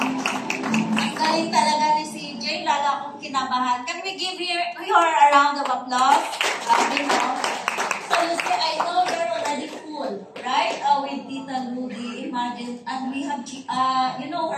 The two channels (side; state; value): both; identical; correlation 1.00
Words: talaga ni CJ, lalo akong kinabahan. Can we give her a round of applause? You know. So you see, I know you're already full, right? With Tita Rudy, imagine, and we have, you know